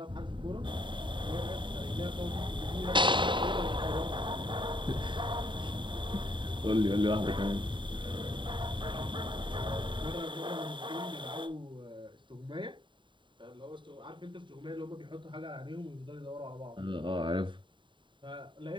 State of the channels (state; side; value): late; left; 0.23 ms